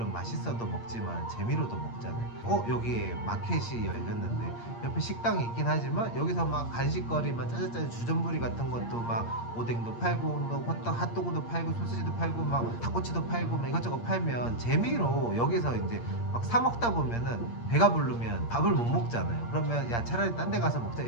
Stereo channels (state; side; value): late; right; 8.6 ms